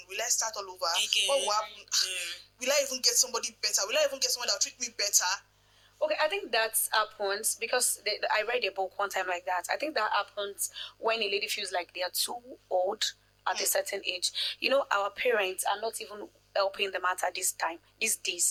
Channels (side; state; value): both; identical; correlation 1.00